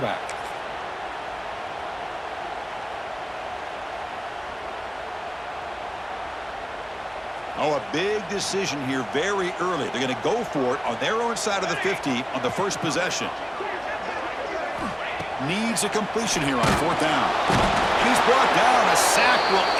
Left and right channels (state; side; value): identical; both; correlation 1.00